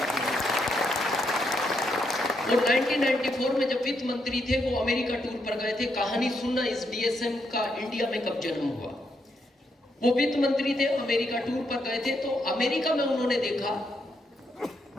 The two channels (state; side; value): normal; both; correlation 0.79